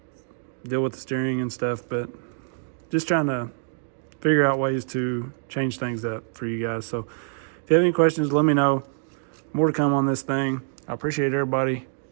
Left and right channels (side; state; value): left; silent; digital silence